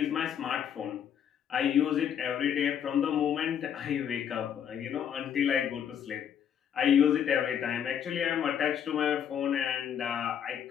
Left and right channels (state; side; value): quieter; right; 8.8 dB